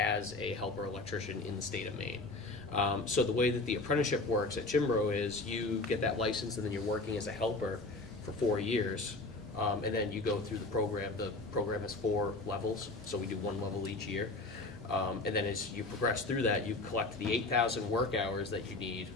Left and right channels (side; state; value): right; quieter; 3.1 dB